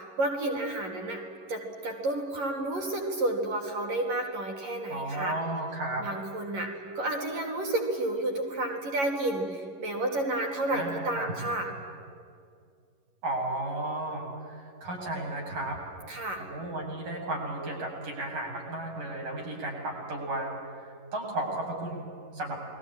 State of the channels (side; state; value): left; late; 11 ms